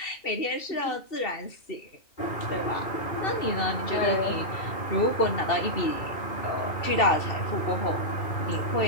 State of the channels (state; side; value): late; right; 2.7 ms